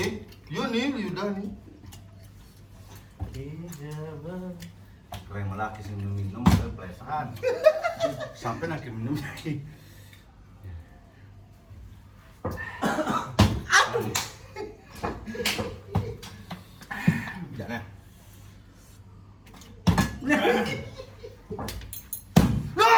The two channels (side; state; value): both; identical; correlation 1.00